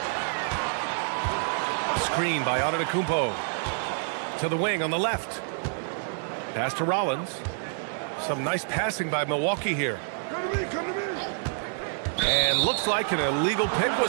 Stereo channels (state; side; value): silent; left; digital silence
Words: Screen by Antetokounmpo. To the wing on the left. Pass to Rollins. Some nice passing by Milwaukee here. Come to me. And looks like an illegal pick